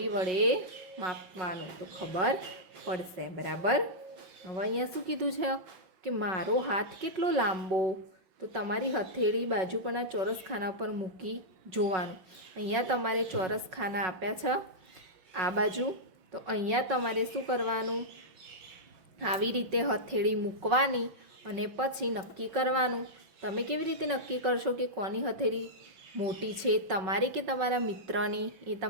વડે માપવાનું તો ખબર પડશે. બરાબર. હવે અહીંયા શું કીધું છે કે મારો હાથ કેટલો લાંબો? તો તમારી હથેળી બાજુ પરના ચોરસ ખાના પર મૂકી જોવાનું. અહીંયા તમારે ચોરસ ખાના આપ્યા છે આ બાજુ. તો અહીંયા તમારે શું કરવાનું? આવી રીતે હથેળી મૂકવાની અને પછી નક્કી કરવાનું. તમે કેવી રીતે નક્કી કરશો કે કોની હથેળી મોટી છે, તમારી કે તમારા મિત્રની? એ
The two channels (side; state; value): left; late; 5.4 ms